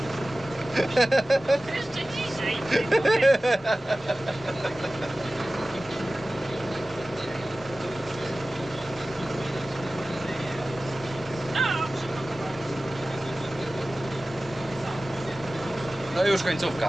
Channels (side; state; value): both; normal; correlation 0.96